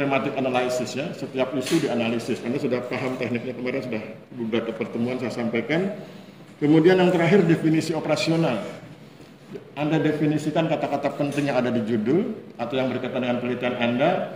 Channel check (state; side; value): identical; both; correlation 1.00